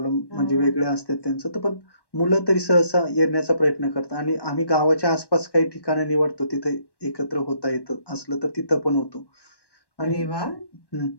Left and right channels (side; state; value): right; late; 1.1 ms